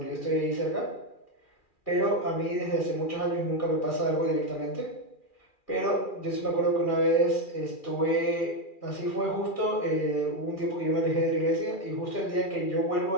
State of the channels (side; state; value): right; late; 2.4 ms